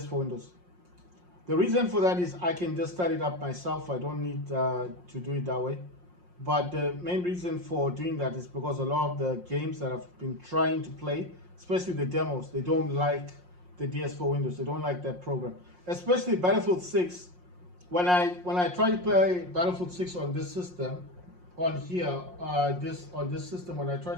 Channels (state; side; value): late; left; 5.6 ms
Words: Windows. The reason for that is I can just start it up myself. I don't need to do it that way. But the main reason for doing that is because a lot of the games that I've been trying to play, especially the demos, they don't like the DS4 Windows. They don't like that program. Especially Battlefield 6. When I try to play Battlefield 6 on this system, on here, on this system, when I try